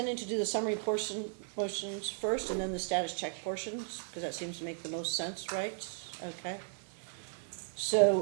to do the summary portions first and then the status check portions, because that seems to make the most sense, right? Okay.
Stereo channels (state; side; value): silent; left; digital silence